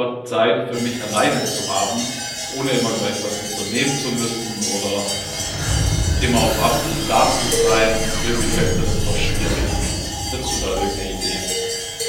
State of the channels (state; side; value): identical; both; correlation 1.00